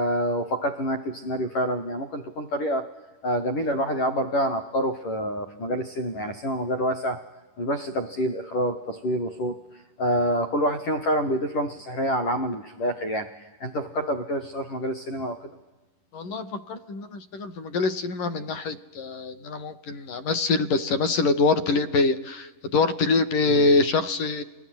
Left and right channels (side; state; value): right; late; 11 ms